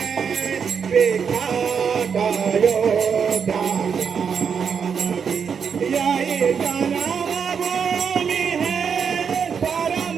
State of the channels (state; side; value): quieter; left; 6.7 dB